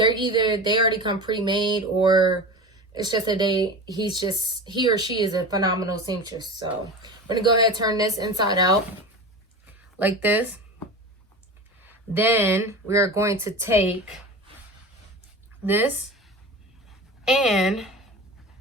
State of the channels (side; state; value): both; normal; correlation 0.30